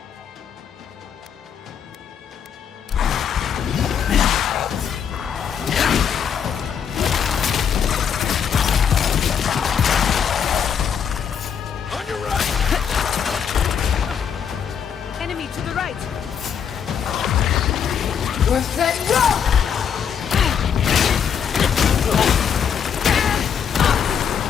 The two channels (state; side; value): quieter; right; 7.7 dB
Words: On your right! Enemy to the right! Worth that rock!